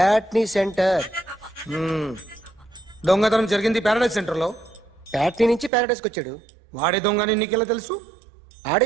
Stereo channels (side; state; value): left; drops out; at 5.7 s